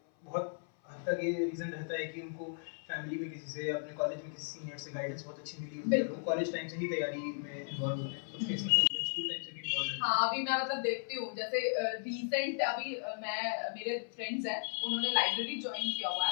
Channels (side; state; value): right; silent; 54 dB below the other